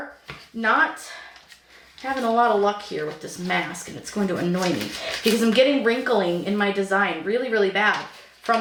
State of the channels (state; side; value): identical; both; correlation 1.00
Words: not having a lot of luck here with this mask, and it's going to annoy me because I'm getting wrinkling in my design really, really bad